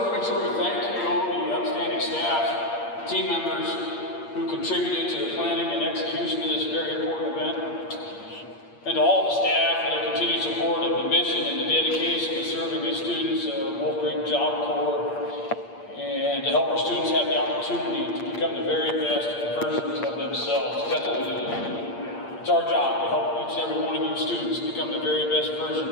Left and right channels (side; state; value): right; late; 8.6 ms